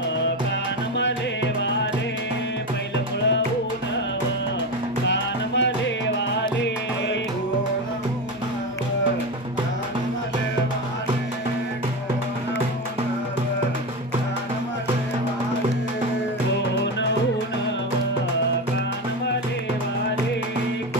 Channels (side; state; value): both; normal; correlation 0.19